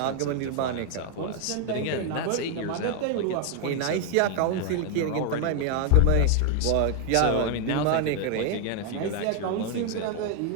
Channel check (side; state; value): both; different; correlation 0.00